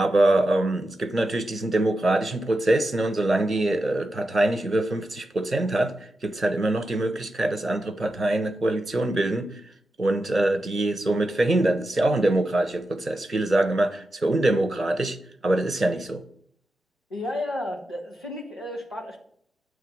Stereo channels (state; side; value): normal; both; correlation 0.89